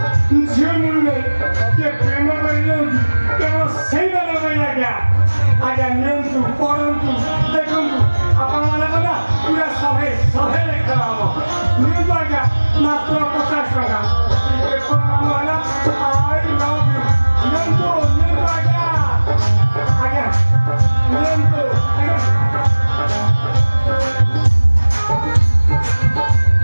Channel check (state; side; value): inverted; both; correlation -1.00